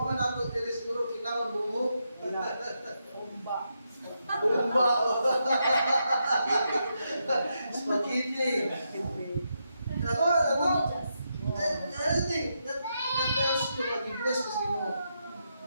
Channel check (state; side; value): inverted; both; correlation -0.83